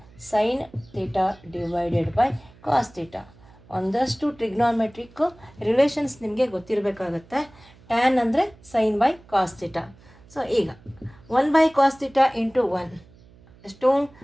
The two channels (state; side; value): noise; right; hum, 25 dB below the sound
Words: sine theta divided by cos theta. ಒಂದಷ್ಟು ಟ್ರಿಗ್ನೋಮೆಟ್ರಿಕ್ ರಿಲೇಷನ್ಸ್ ನಿಮಗೆ ಗೊತ್ತಿರಬೇಕಾಗತ್ತೆ. ಟ್ಯಾನ್ ಅಂದರೆ sine by cos theta. So ಈಗ 1/cos ಥೀಟಾ ಇಂಟು 1 ಎಷ್ಟು